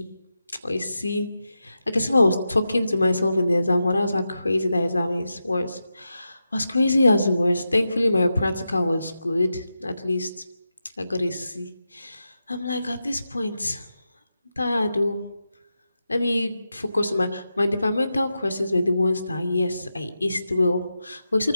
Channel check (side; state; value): both; inverted; correlation -0.89